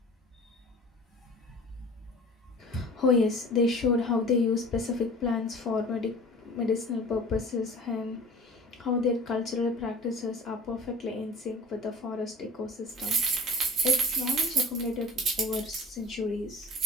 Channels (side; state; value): both; normal; correlation 0.43